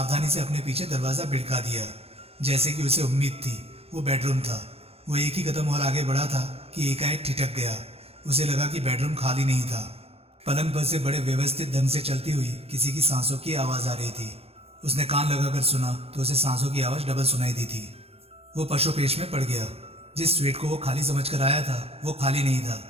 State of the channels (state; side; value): late; left; 0.29 ms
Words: से अपने पीछे दरवाजा भिड़का दिया। जैसे कि उसे उम्मीद थी, वो बेडरूम था। वो एक ही कदम और आगे बढ़ा था कि एकाएक ठिठक गया। उसे लगा कि बेडरूम खाली नहीं था। पलंग पर से बड़े व्यवस्थित ढंग से चलती हुई किसी की सांसों की आवाज आ रही थी। उसने कान लगाकर सुना तो उसे सांसों की आवाज डबल सुनाई दी थी। वो पशुपेश में पड़ गया। जिस स्वीट को वो खाली समझकर आया था वो खाली नहीं था।